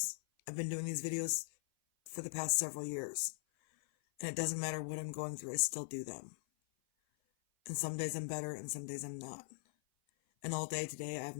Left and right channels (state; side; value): silent; right; 51 dB below the other